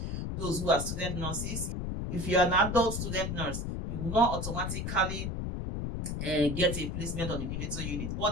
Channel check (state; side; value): noise; left; rumble, 3 dB below the sound